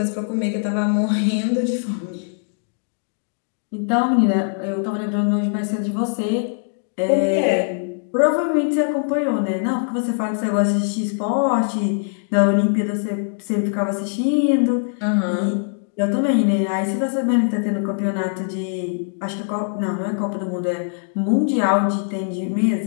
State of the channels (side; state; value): right; silent; digital silence